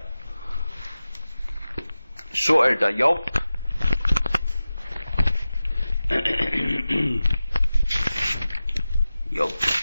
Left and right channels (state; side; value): inverted; both; correlation -0.94